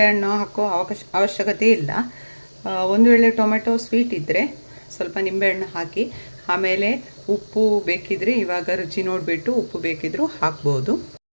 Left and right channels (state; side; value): inverted; both; correlation -1.00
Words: ಹಾಕೋ ಅವಶ್ಯಕತೆ ಇಲ್ಲ. ಒಂದು ವೇಳೆ ಟೊಮೆಟೊ ಸ್ವೀಟ್ ಇದ್ದರೆ ಸ್ವಲ್ಪ ನಿಂಬೆಹಣ್ಣು ಹಾಕಿ, ಆಮೇಲೆ ಉಪ್ಪು ಬೇಕಿದ್ರೆ ಇವಾಗ ರುಚಿ ನೋಡಿಬಿಟ್ಟು ಉಪ್ಪು ಬೇಕಿದ್ರೂ ಹಾಕ್ಬೋದು.